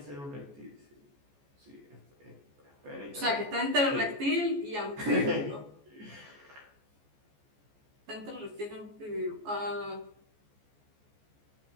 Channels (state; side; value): late; left; 14 ms